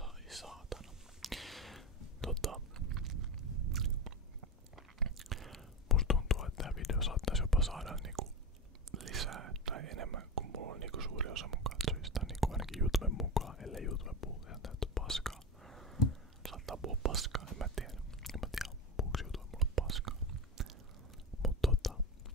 saatana. Musta tuntuu, että tää video saattaisi jopa saada niinku lisää tai enemmän, kun mulla on niinku suuri osa mun katsojista, niinku ainakin YouTuben mukaan, ellei YouTube puhu ihan täyttä paskaa. Saattaa puhua paskaa, en mä tiedä puhuuko YouTube mulle paskaa. Mut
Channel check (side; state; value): both; normal; correlation 0.22